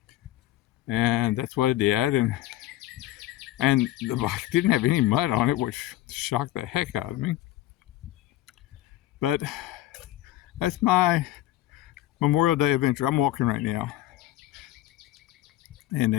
And that's what I did. And the bike didn't have any mud on it, which shocked the heck out of me. But that's my Memorial Day adventure. I'm walking right now. And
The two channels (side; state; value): right; quieter; 14.9 dB